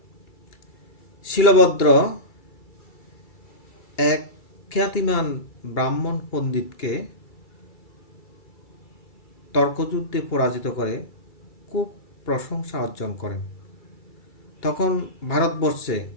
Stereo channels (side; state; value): right; late; 2.3 ms